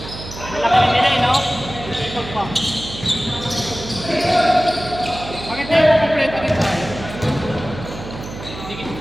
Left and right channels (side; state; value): right; noise; hum, 11 dB below the sound